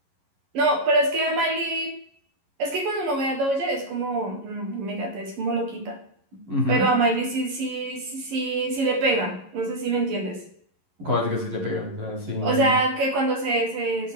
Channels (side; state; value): left; late; 11 ms